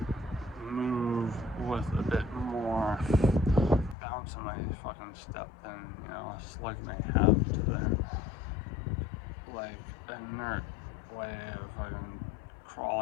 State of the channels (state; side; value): drops out; right; at 4.0 s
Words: move with a bit more bounce in my fucking step than, you know, a slug may have to their like inert way of fucking